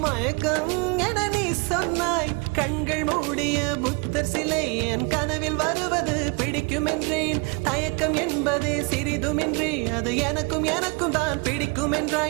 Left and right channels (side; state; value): left; quieter; 30.1 dB